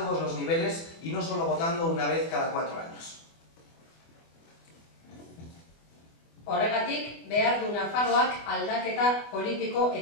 los niveles y no solo votando una vez cada 4 años. Horregatik, behar du Nafarroak aldaketa politiko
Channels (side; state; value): right; late; 24 ms